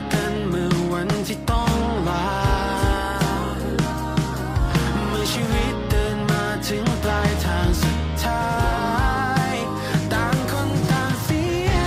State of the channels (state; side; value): identical; both; correlation 1.00